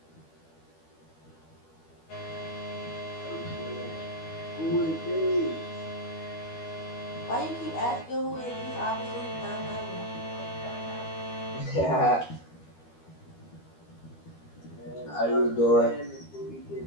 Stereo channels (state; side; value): late; right; 12 ms